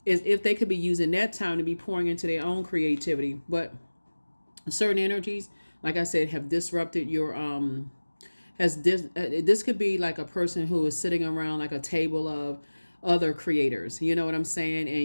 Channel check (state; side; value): inverted; both; correlation -1.00